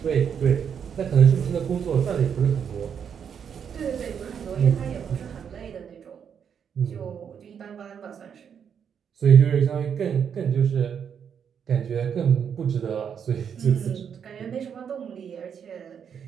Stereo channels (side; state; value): left; quieter; 7.6 dB